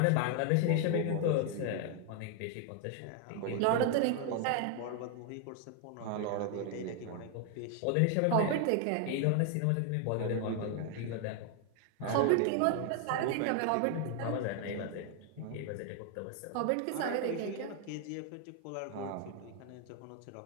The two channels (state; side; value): different; both; correlation 0.00